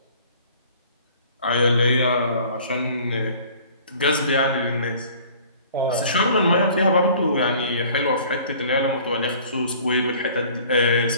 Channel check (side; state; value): both; inverted; correlation -0.50